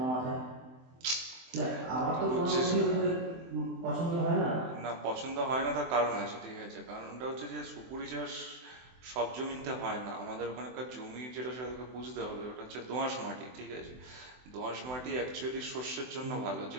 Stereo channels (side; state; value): left; late; 24 ms